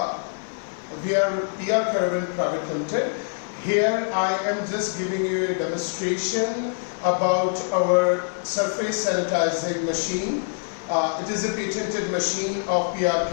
We are PR Caravan Private Limited. Here I am just giving you a demonstration about our surface sanitizing machine. It is a patented machine of PR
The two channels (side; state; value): right; silent; digital silence